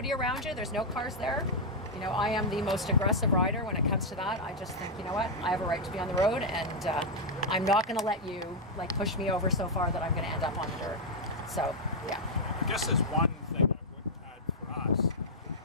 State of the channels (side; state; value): both; normal; correlation -0.03